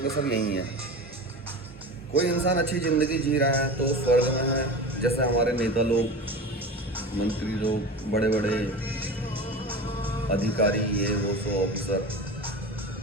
सब यही है। कोई इंसान अच्छी ज़िंदगी जी रहा है तो स्वर्ग में है, जैसे हमारे नेता लोग, मंत्री लोग, बड़े बड़े अधिकारी ये वो सो ऑफिसर।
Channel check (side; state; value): both; normal; correlation 0.30